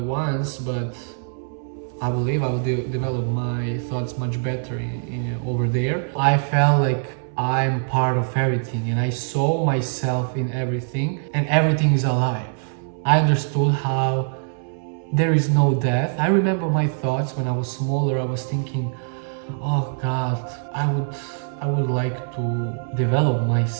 once, but I believe I will develop my thoughts much better over there. I felt like I'm part of everything, and I saw myself in everything, and everything is alive. I understood how there is no death. I remember my thoughts when I was smaller. I was thinking, oh God, I would like to develop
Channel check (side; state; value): left; silent; 63 dB below the other